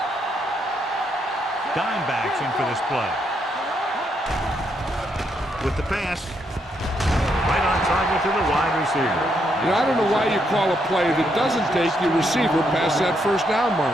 Dimebacks in for this play. With the pass, right on target to the wide receiver. You know, I don't know why you call a play that doesn't take your receiver past that first down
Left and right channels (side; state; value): both; normal; correlation 0.77